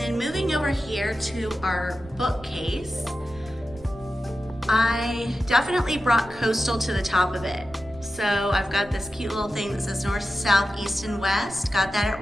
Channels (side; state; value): right; noise; rumble, 20 dB below the sound